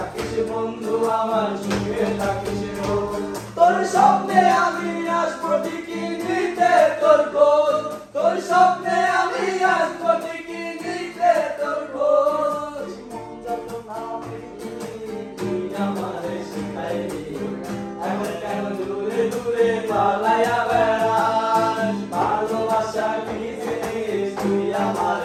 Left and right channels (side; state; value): both; identical; correlation 1.00